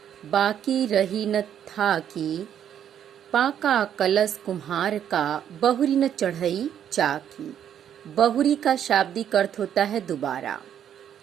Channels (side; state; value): left; quieter; 9.6 dB